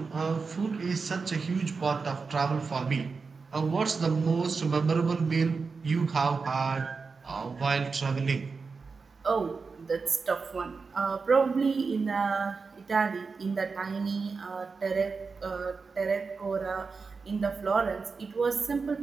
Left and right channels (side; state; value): left; quieter; 4.7 dB